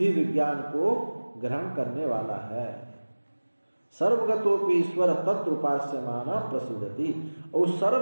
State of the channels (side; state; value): both; inverted; correlation -1.00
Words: विज्ञान को ग्रहण करने वाला है। सर्वगतोपि ईश्वर तत्र उपास्यमाना प्रसिद्धति, और